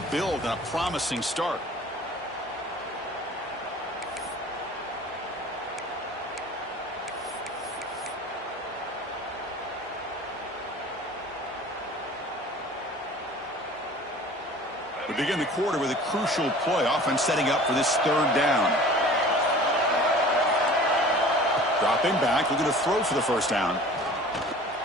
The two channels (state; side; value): normal; both; correlation 0.44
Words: build on a promising start. We begin the quarter with a crucial play. Offense setting up for this third down. Dropping back, looking to throw for the first down.